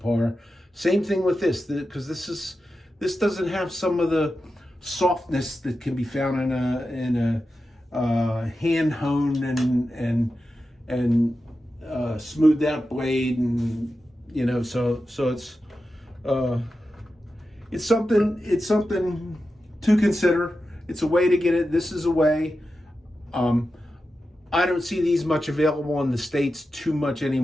Same thing with this, because this doesn't have some of the softness that can be found in a hand honed and smoothed out blade, and so it's something to consider. It's a way to get it. This is a way. I don't see these much available in the States too much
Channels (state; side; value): normal; both; correlation 0.91